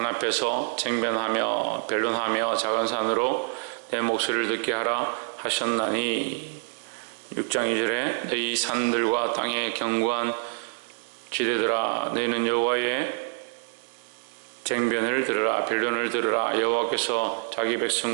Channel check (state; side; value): silent; left; 61 dB below the other